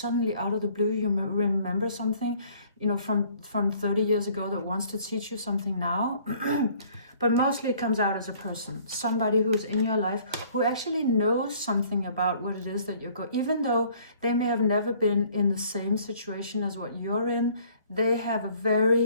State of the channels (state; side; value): inverted; both; correlation -0.57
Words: out of the blue you remember something, from 30 years ago that wants to teach you something now. But mostly it comes out as a person, somebody who's in your life who actually knows something about what it is that you're going, even though they may have never been in the same situation as what you're in. They have a